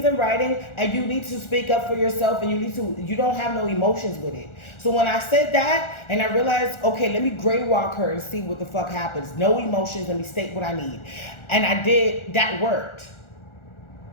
in writing and you need to speak up for yourself and you don't have no emotions with it. So when I said that and I realized, okay, let me gray walk her and see what the fuck happens. No emotions, let me state what I need. And I did, that worked.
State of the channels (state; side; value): late; right; 1.4 ms